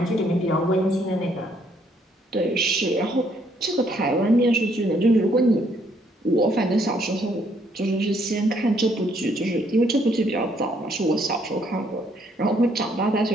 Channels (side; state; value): both; normal; correlation 0.68